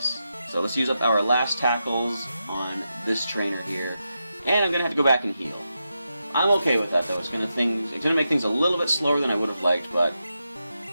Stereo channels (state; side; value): inverted; both; correlation -0.88